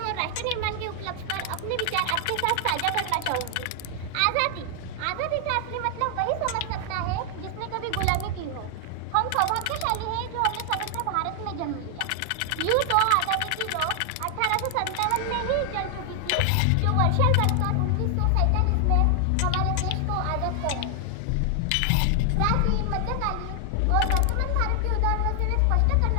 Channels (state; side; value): different; both; correlation 0.00